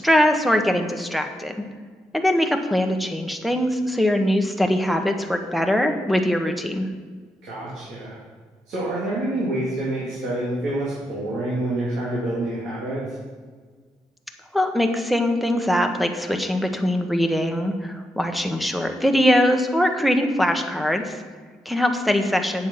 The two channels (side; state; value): both; normal; correlation 0.85